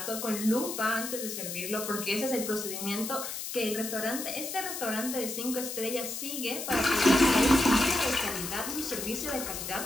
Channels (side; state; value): left; noise; hiss, 6 dB below the sound